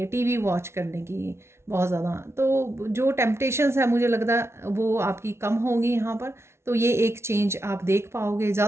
टीवी वॉच करने की बहुत ज़्यादा। तो जो टेम्पटेशंस है मुझे लगता है वो आपकी कम होंगी यहाँ पर। तो ये एक चेंज आप देख पाओगे।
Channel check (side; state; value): left; late; 0.13 ms